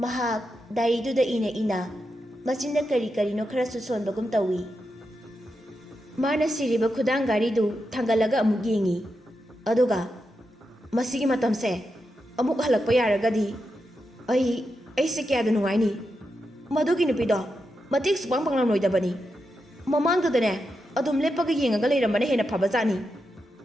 diary du da ina machinda kari no khara su sonbagum tawi mana siriba khudang gari du thangalaga amuk yengi aduga masigi matamse amuk halakpa yaragadi ai se kya da nungai ni madugi nupido matik supang panglam loidabani mamang da ne adum lepaga yengaga leiramane hena phabajani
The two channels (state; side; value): normal; both; correlation 0.87